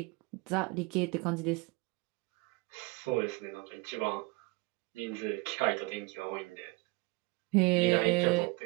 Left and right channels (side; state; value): left; quieter; 24.6 dB